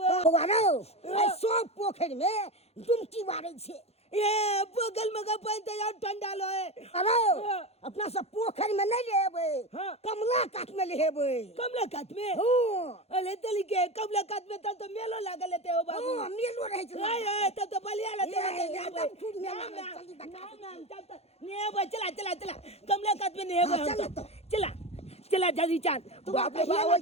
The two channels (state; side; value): late; right; 0.30 ms